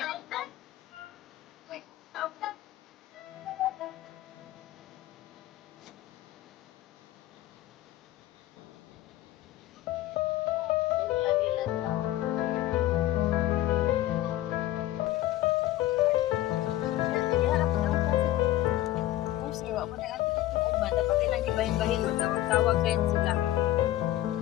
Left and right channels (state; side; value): quieter; right; 14.9 dB